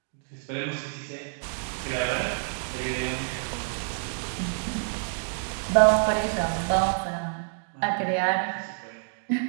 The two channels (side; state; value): left; silent; digital silence